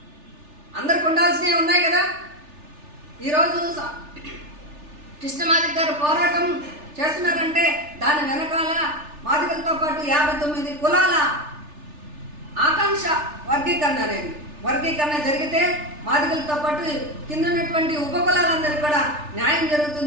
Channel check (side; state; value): left; late; 3.4 ms